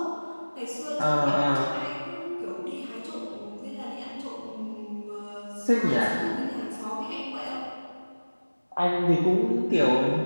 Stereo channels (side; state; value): both; inverted; correlation -1.00